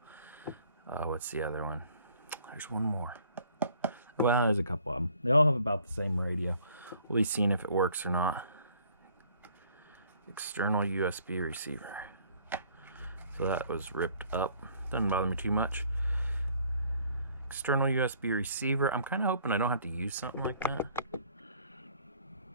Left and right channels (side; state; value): both; inverted; correlation -0.59